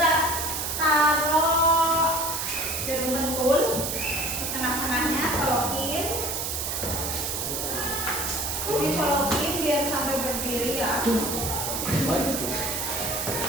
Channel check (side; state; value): right; noise; hiss, 2 dB below the sound